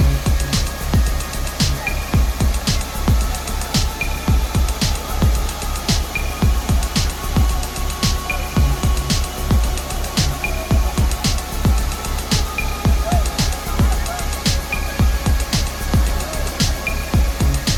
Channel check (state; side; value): identical; both; correlation 1.00